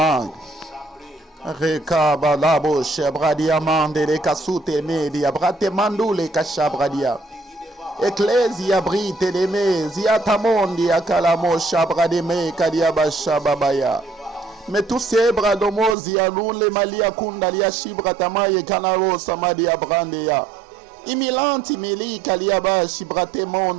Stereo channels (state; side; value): drops out; left; at 16.0 s